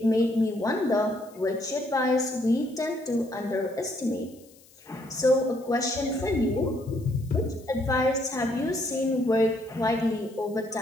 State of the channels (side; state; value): left; noise; hiss, 27 dB below the sound